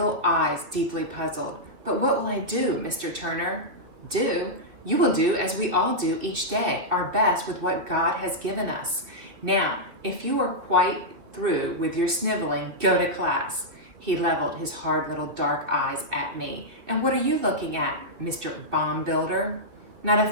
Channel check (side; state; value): left; late; 2.9 ms